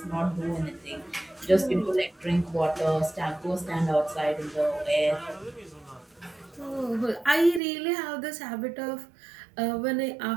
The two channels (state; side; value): drops out; left; at 7.6 s